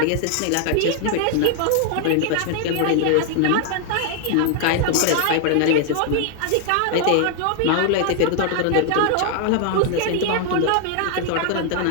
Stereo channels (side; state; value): both; different; correlation 0.00